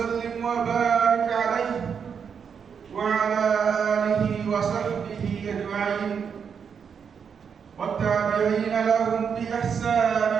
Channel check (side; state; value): left; quieter; 6.8 dB